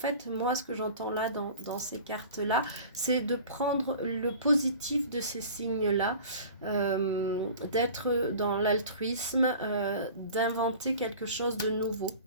moi, ce que j'entends là dans ces cartes-là, c'est de prendre le positif de ces signes-là, d'être dans l'altruisme, d'inventer quelque chose de nouveau.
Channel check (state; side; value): inverted; both; correlation -0.41